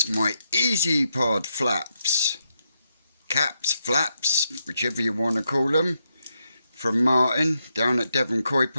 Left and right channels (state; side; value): inverted; both; correlation -0.82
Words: my Easypod flaps, caps, flaps, whichever you want to call them, from Martin down at Devon Koi